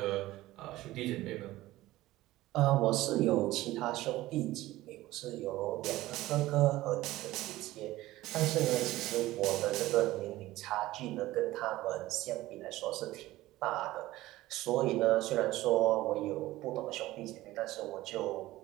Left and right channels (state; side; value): quieter; left; 16.9 dB